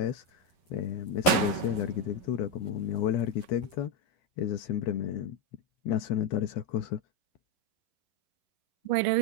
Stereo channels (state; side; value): late; right; 11 ms